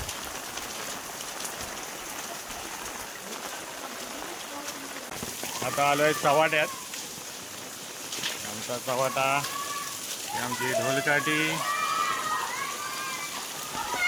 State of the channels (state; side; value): identical; both; correlation 1.00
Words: आता आलोय चव्हाट्यात. आमचा चव्हाटा, आमची ढोलकाठी.